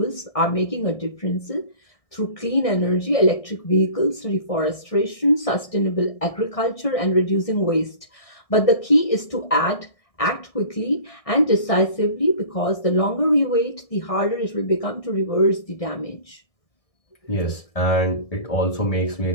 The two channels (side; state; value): right; late; 1.6 ms